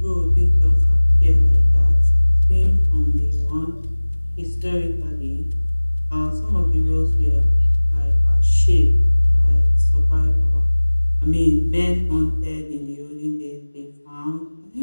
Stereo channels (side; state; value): both; inverted; correlation -1.00